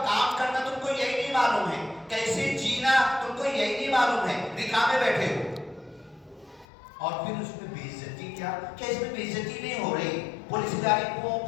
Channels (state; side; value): drops out; right; at 6.7 s